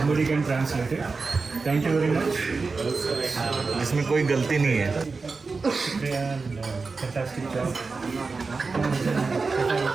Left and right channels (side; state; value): left; quieter; 4.3 dB